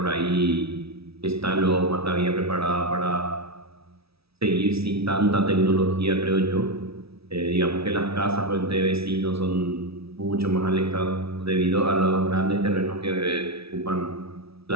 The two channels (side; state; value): left; late; 0.77 ms